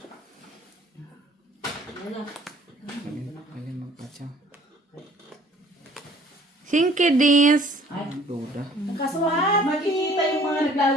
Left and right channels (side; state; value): both; normal; correlation 0.55